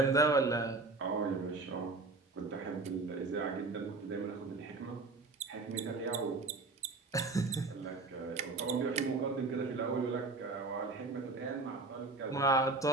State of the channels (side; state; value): left; quieter; 3.6 dB